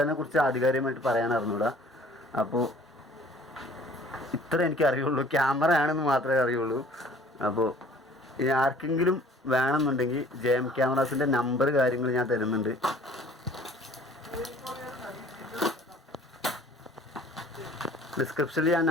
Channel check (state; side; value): normal; both; correlation 0.52